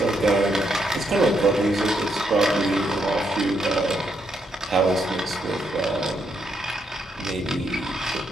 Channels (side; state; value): both; normal; correlation 0.78